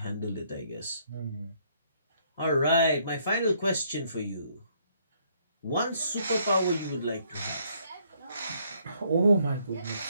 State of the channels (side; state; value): both; inverted; correlation -0.68